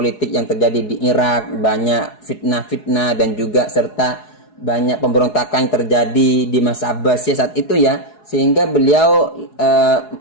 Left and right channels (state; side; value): late; right; 4.8 ms